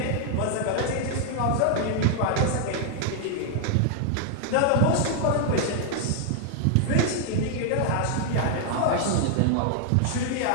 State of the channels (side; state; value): both; different; correlation 0.00